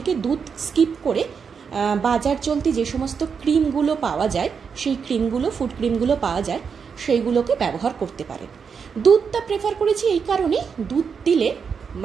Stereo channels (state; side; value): quieter; left; 6.2 dB